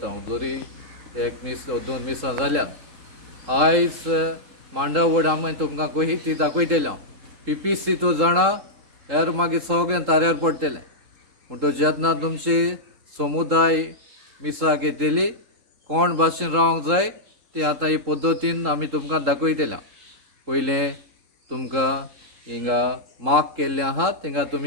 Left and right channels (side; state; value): left; late; 3.8 ms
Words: जरी एक मीस 2 मिसां जाल्यात. आयज मांडावड आमी तुमकां कशी ती दाखयतलें. पीपीसी तो जाणा हेर मागीर सगळ्यां ताऱ्यार पडटलें. म्हणटच जेन्ना तुमची समुदाय मिसाक येतली कोण भाशेन रावंक जाय ती आतां ही पद्दतीन आमी तुमकां दाखयतलें. पयलें तुमकां हिंगा मार्क केल्लें आहा थिंगा